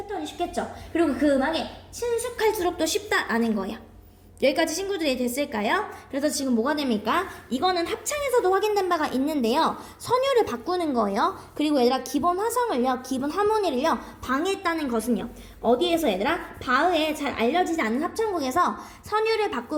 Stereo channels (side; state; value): both; identical; correlation 1.00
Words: 쉽겠죠. 그리고 그 음악에 친숙할수록 또 쉽다라는 거예요. 여기까지 친구들이 됐을까요? 그래서 지금 뭐가 됩니까? 이거는 합창에서도 확인된 바가 있는데요. 선율을 바꾸는 거예요. 그리고 얘들아 기본 화성을요, 기본 하모니를요 방해했다는 것은요. 어디에서 얘들아? 바흐에 잘 알려지지 않는 합창곡에서 선율을